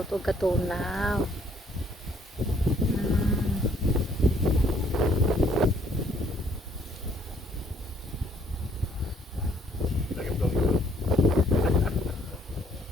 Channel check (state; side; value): normal; both; correlation 0.64